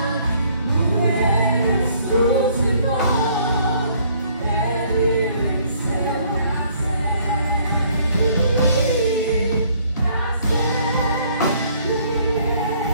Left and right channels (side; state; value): both; inverted; correlation -0.62